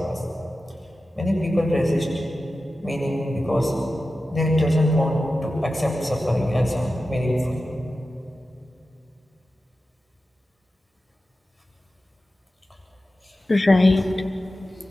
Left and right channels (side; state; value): both; normal; correlation 0.93